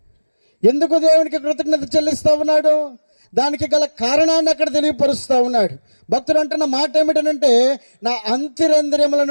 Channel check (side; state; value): both; inverted; correlation -1.00